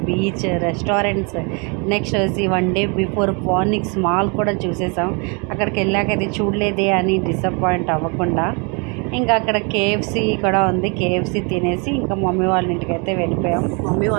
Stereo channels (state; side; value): quieter; left; 33.1 dB